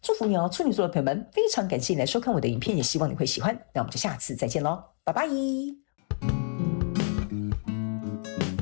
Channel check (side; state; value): right; silent; 59 dB below the other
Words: 祝福你哦，處女座的朋友們，非常感謝你來收看我的影片，也希望你會喜歡。那我們就下次再見嘍，拜拜。